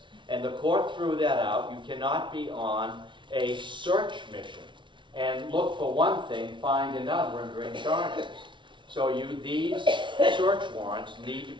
And the court threw that out. You cannot be on a search mission and look for one thing, find another, and bring charges. So these search warrants need to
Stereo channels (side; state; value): left; late; 0.24 ms